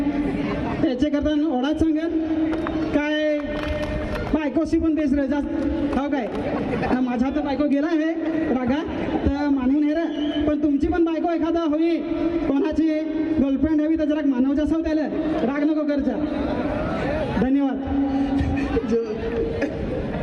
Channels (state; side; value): identical; both; correlation 1.00